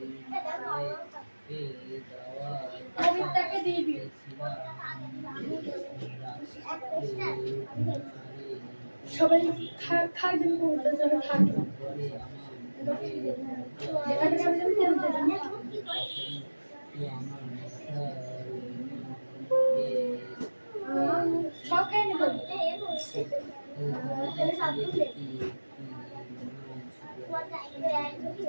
পবিত্রকে দিবি। সবাই খাবেন পবিত্র জন্য থাকে সব খাই নেব।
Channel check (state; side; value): inverted; both; correlation -1.00